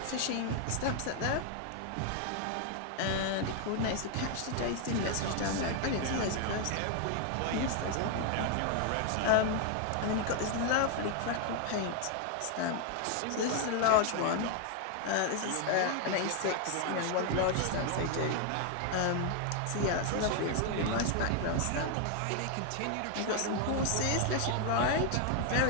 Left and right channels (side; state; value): both; different; correlation 0.01